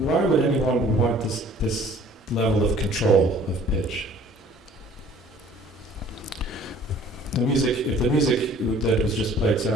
would anyone want this level of control of pitch? If the music that was just played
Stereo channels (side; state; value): both; normal; correlation 0.53